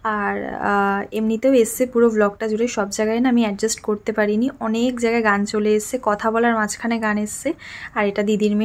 আর এমনিতেও এসছে পুরো ব্লগটা জুড়ে, সব জায়গায় না আমি অ্যাডজাস্ট করতে পারিনি, অনেক জায়গায় গান চলে এসছে, কথা বলার মাঝখানে গান এসছে। আর এটা দিদির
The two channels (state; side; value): identical; both; correlation 1.00